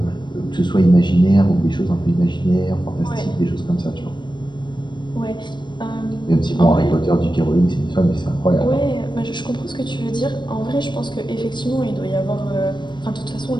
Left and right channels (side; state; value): right; late; 0.22 ms